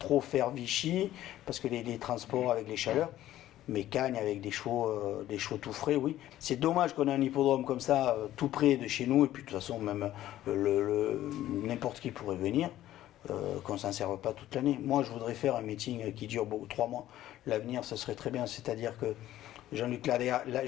faire Vichy, parce que les transports avec les chaleurs. Mais Cagnes avec des chevaux tout frais, oui. C'est dommage qu'on ait un hippodrome comme ça, tout près de chez nous, et puis de toute façon, même n'importe qui pourrait venir, qu'on ne s'en serve pas toute l'année. Moi, je voudrais faire un meeting qui dure 3 mois. L'avenir, ce serait très bien. C'est-à-dire que Jean-Luc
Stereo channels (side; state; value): right; quieter; 13.6 dB